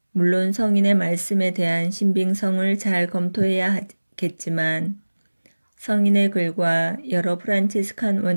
물론 성인의 말씀에 대한 신빙성을 잘 검토해야 하겠지만 성인의 글과 여러 프란치스칸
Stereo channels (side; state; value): both; inverted; correlation -1.00